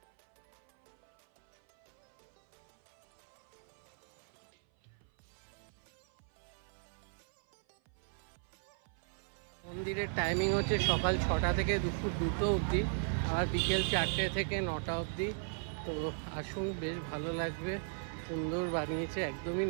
মন্দিরের টাইমিং হচ্ছে সকাল 6টা থেকে দুপুর 2টো অবধি, আর বিকেল 4টে থেকে 9টা অবধি। তো আসুন, বেশ ভালো লাগবে, সুন্দর বানিয়েছে, একদমই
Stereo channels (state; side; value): silent; left; 53 dB below the other